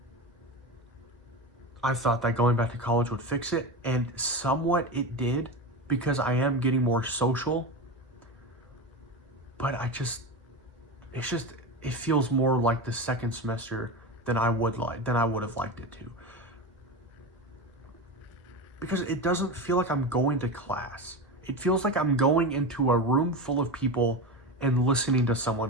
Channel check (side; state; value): both; normal; correlation 0.22